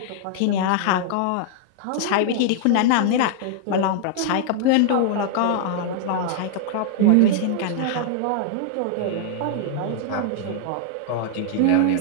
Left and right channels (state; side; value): different; both; correlation -0.01